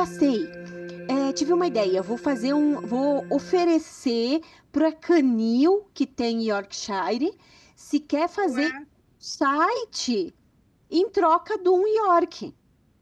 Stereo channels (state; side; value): identical; both; correlation 1.00